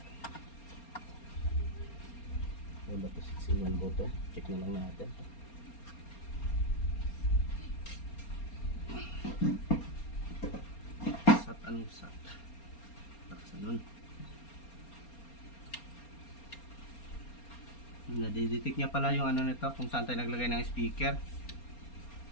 Ano ba to? 6-in-1 button. Check na lang natin. Sat, anong sat? Bakasan nun. Nadidetect niya pala yung ano nito kung saan tayo naglagay ng speaker.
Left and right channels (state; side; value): late; right; 4.3 ms